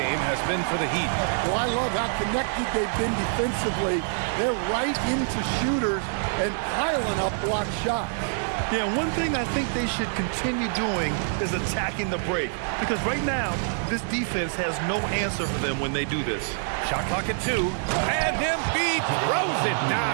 has been for the Heat. Well, I love how connected they've been defensively. They're right into shooters and piling up block shots. Yeah, one thing I think they should continue doing is attacking the break. Because right now, this defense has no answer for them when they do this. Shot clock at 2. And Embiid throws it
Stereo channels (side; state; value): left; silent; digital silence